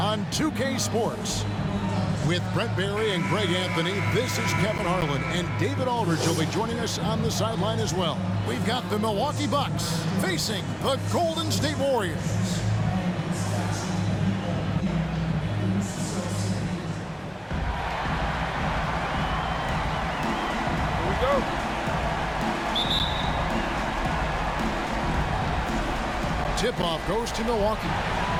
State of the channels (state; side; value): identical; both; correlation 1.00